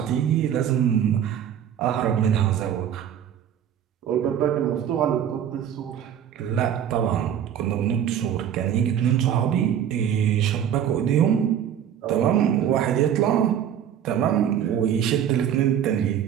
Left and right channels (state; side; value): quieter; left; 9.5 dB